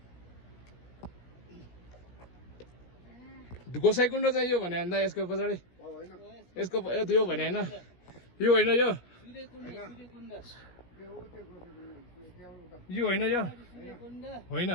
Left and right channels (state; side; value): late; right; 17 ms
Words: गोसाइकुण्ड चाहिँ यो भने अन्दा यसको पछाडि यसको यो भने हैन, यो होइन, यो यो होइन, यो होइन।